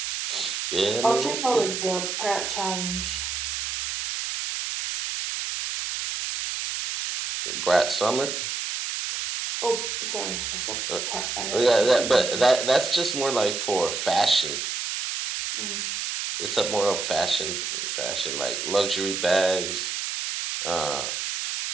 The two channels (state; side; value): noise; right; hiss, 3 dB below the sound